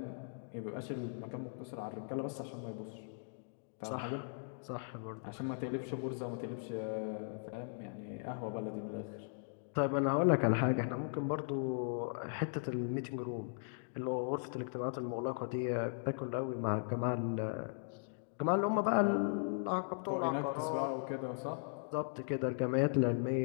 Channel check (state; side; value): silent; right; digital silence